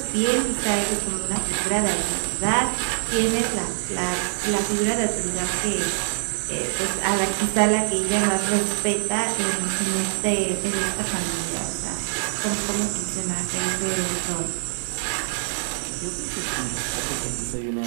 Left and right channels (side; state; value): left; silent; 62 dB below the other